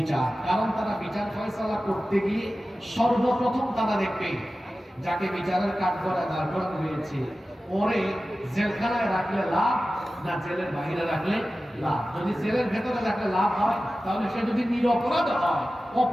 কারণ তারা বিচার ফয়সালা করতে গিয়ে সর্বপ্রথম তারা দেখবে যাকে বিচারের কাঠগড়ায় দাঁড় করানো হয়েছে, ওরে জেলখানায় রাখলে লাভ না জেলের বাইরে রাখলে লাভ? যদি জেলের ভেতরে রাখলে লাভ হয়, তাহলে সে যদি নিরপরাধ হয়,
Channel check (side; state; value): both; normal; correlation 0.95